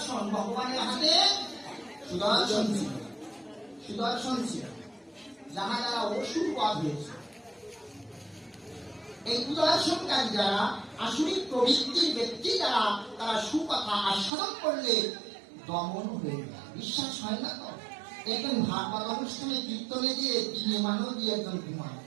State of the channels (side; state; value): left; drops out; at 14.3 s